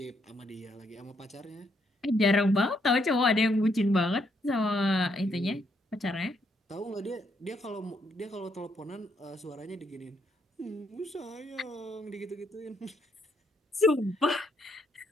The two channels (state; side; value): normal; both; correlation 0.74